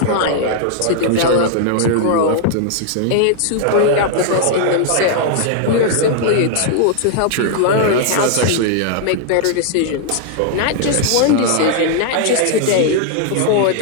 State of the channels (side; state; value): both; different; correlation -0.01